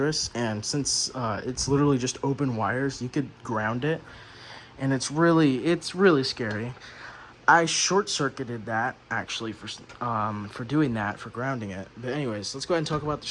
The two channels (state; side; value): identical; both; correlation 1.00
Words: and since it's literally just open wires, you could ground it, and it's really scary. I short-circuited that, actually, for doing that, for grounding it. But anyways, let's go ahead and talk about the